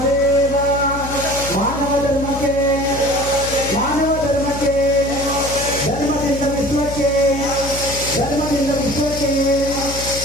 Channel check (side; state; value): left; noise; hum, 9 dB below the sound